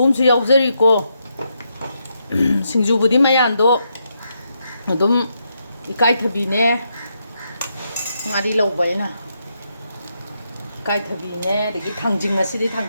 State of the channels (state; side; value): inverted; both; correlation -0.81